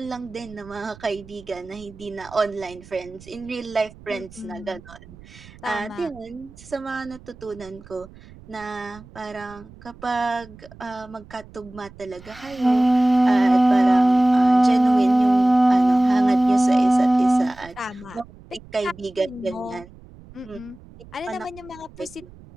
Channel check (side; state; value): right; noise; rumble, 21 dB below the sound